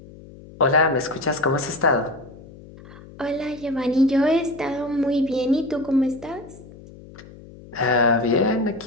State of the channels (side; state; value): left; noise; hum, 19 dB below the sound